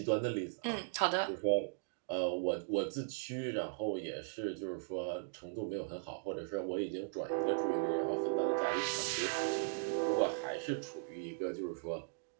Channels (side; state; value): left; silent; digital silence